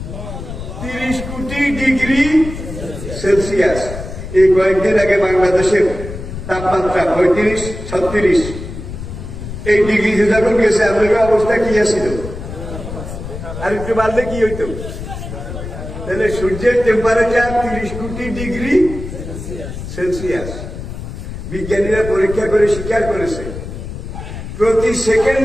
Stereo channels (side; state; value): left; noise; rumble, 9 dB below the sound